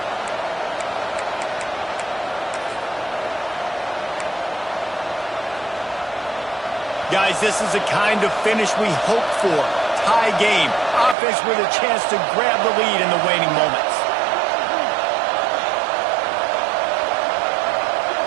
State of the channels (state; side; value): drops out; left; at 11.2 s